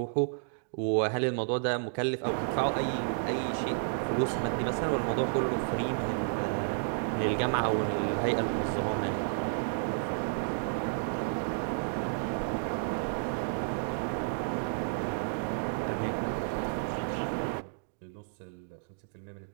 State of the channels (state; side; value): silent; left; digital silence